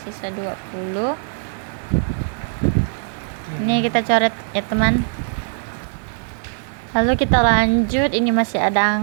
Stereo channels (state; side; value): silent; left; digital silence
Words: sisa 20. Ini kita coret ya teman. Lalu kita lanjut, ini masih ada